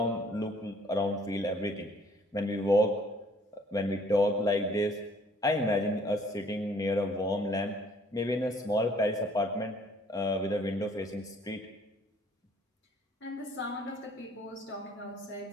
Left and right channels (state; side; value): normal; both; correlation 0.59